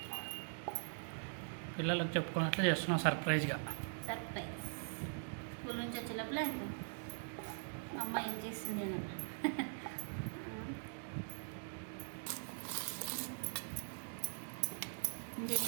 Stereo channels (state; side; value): silent; left; digital silence